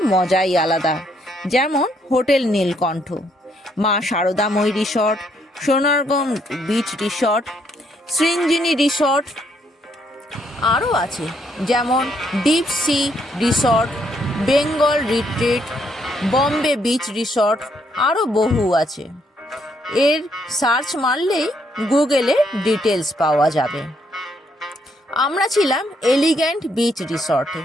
মজাই আলাদা। যেমন hotel Nilkantha, Maa Saradamayee resort, Sonargaon beach resort, Srinjini resort. আরও আছে যেমন deep sea resort, Bengal retreat, Bombay beach resort, আরও বহু আছে। এর সার্চ মারলেই গুগলে ডিটেলস পাওয়া যাবে। আমরা ছিলাম এলিগ্যান্ট বিচ রিসর্টে।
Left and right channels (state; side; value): normal; both; correlation 0.72